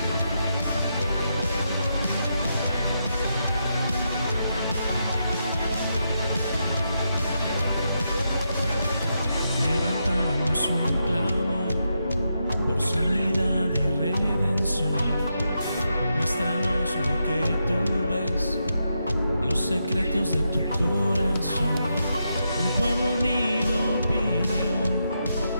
Un clamor por sanidad y redención. Muéstranos lo que tú ves, los secretos de tu corazón. Un pueblo unido pide hoy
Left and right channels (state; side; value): inverted; both; correlation -0.84